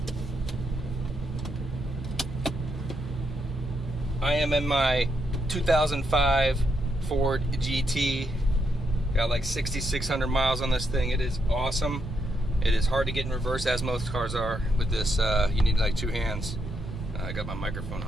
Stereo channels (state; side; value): normal; both; correlation 0.79